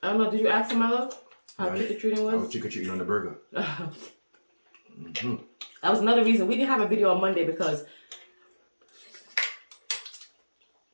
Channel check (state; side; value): inverted; both; correlation -1.00